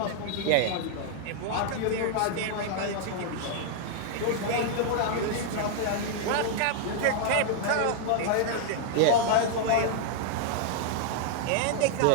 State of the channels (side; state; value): both; different; correlation -0.01